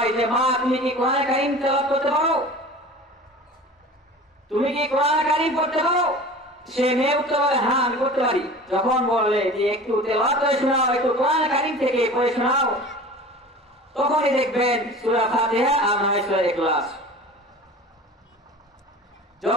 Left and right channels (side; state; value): both; normal; correlation 0.39